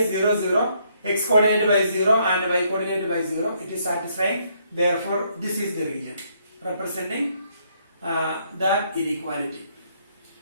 0, 0. X coordinate by 0 and y coordinate by 0. It is satisfying. Therefore, this is the region representing that inequality.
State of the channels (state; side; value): inverted; both; correlation -0.71